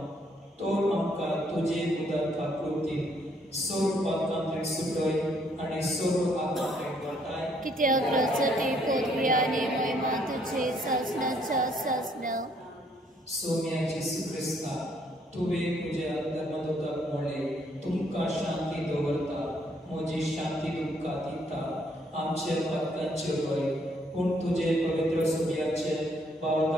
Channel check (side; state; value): both; normal; correlation 0.68